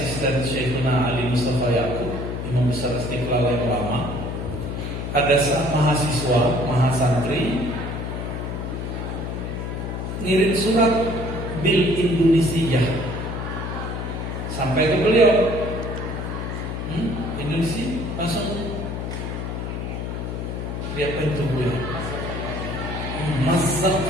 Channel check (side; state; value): left; noise; hum, 4 dB below the sound